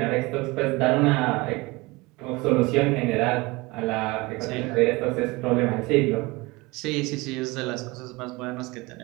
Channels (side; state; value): left; quieter; 23.4 dB